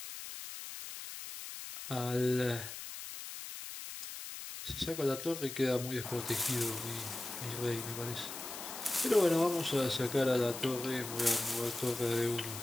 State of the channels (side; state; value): left; noise; hiss, 9 dB below the sound